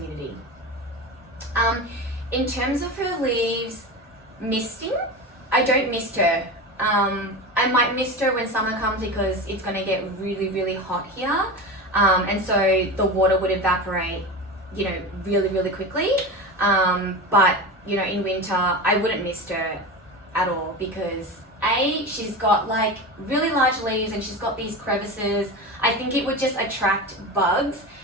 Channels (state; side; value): normal; both; correlation 0.26